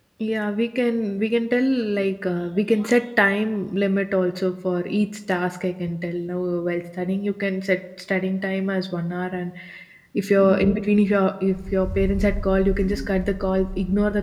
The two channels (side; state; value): both; identical; correlation 1.00